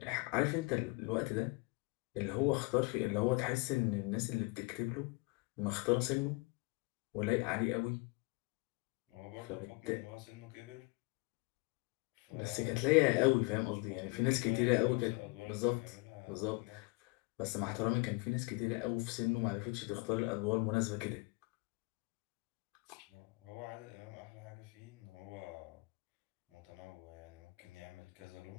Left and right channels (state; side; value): quieter; right; 27.7 dB